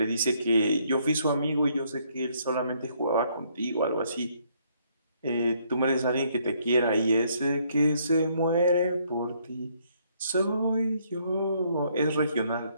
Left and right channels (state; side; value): inverted; both; correlation -0.69